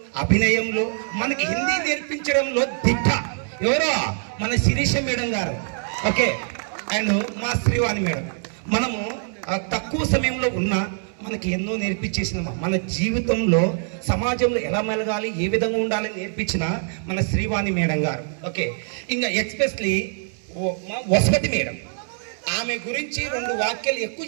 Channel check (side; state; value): left; silent; 59 dB below the other